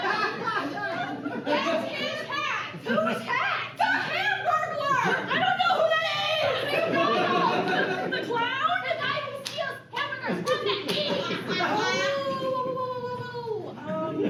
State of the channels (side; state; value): both; identical; correlation 1.00